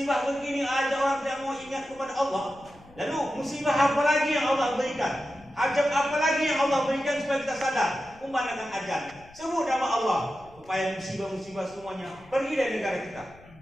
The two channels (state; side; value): noise; left; rumble, 24 dB below the sound